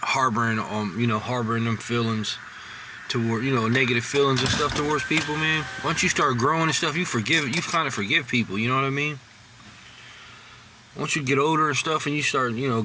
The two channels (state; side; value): identical; both; correlation 1.00